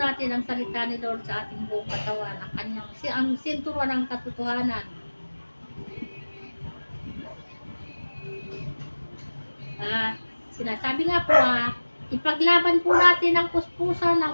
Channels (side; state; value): both; inverted; correlation -1.00